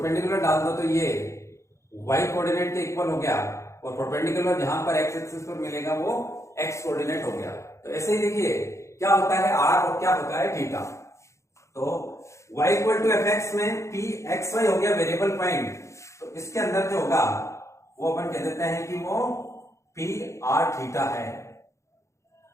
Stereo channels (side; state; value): right; late; 0.14 ms